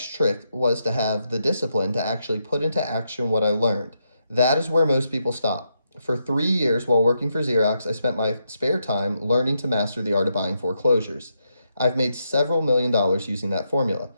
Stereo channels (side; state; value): both; inverted; correlation -0.81